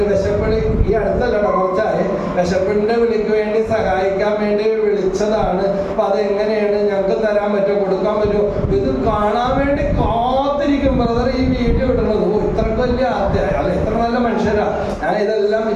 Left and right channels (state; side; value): identical; both; correlation 1.00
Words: വിശപ്പിളി ഈ അടുത്തല്ലട്ടോ, കുറച്ചായി. വിശപ്പിന്റെ വിളിക്ക് വേണ്ടി സഹായിക്കാൻ വേണ്ടി വിളിച്ചതാണ്. അപ്പൊ അതെങ്ങനെയാണ്, ഞങ്ങൾക്ക് തരാൻ പറ്റുമോ, കൊടുക്കാൻ പറ്റുമോ? ഇത് കാണാൻ വേണ്ടി കാത്തിരിക്കും ബ്രദർ ഈ വീഡിയോ ഇടുന്നത്. ഇത്രക്ക് വലിയ അല്ല, ഇത്ര നല്ല മനുഷ്യരാ. ഞാൻ ഇതെല്ലാം